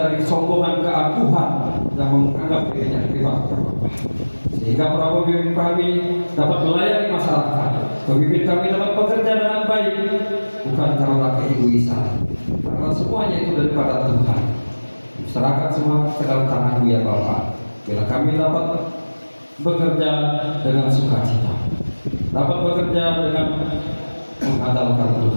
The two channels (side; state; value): both; inverted; correlation -1.00